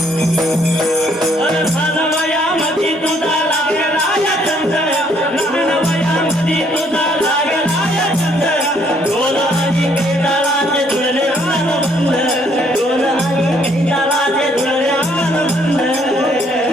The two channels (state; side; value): normal; both; correlation 0.66